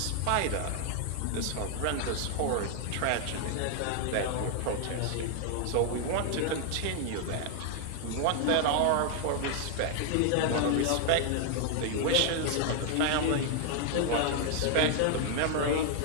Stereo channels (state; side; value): different; both; correlation 0.00